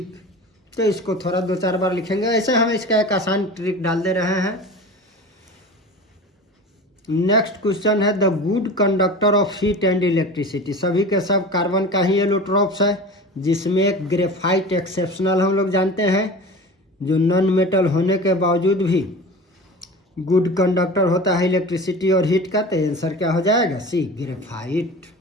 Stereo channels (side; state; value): both; normal; correlation 0.34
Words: तो इसको थोड़ा 2-4 बार लिखेंगे। ऐसे हम इसका एक आसान ट्रिक डाल दे रहे हैं। नेक्स्ट क्वेश्चन है the good conductor of heat and electricity. सभी के सब कार्बन का ही एलोट्रोप्स है, जिसमें एक ग्रेफाइट एक्सेप्शनल हम लोग जानते हैं, जो नॉन मेटल होने के बावजूद भी गुड कंडक्टर होता है इलेक्ट्रिसिटी और हीट का। तो आंसर क्या हो जाएगा? सी, ग्रेफाइट।